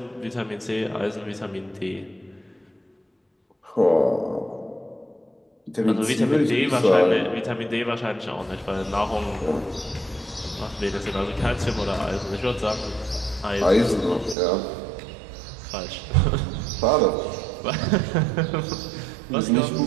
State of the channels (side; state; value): left; drops out; at 14.4 s